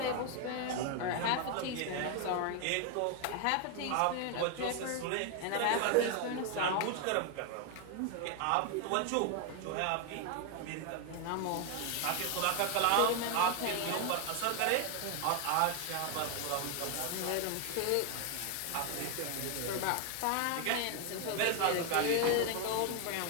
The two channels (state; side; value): different; both; correlation 0.01